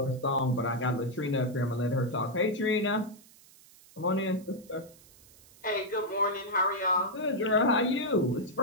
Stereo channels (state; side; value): noise; right; hiss, 25 dB below the sound